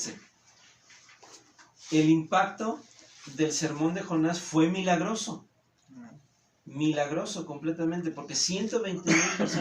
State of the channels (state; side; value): identical; both; correlation 1.00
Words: el impacto del sermón de Jonás fue milagroso. Milagroso completamente, porque 120,000